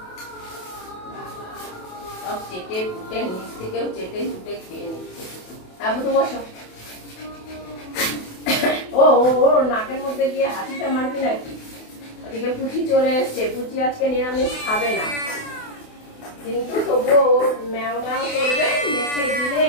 সব চেটে পুটে নিচ থেকেও চেটে চুটে খেয়ে নিচ্ছে। হ্যাঁ তো বসো। ও ও নাকের মধ্যে গিয়ে হাসিটা মারবি নাকি? ওদিকে পুচি চলে এসছে, পুচি আজকে নিরামিষ খাবে না, কিন্তু তবুও ম্যাও ম্যাও করবে, মেখে দিলে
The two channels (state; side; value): late; right; 28 ms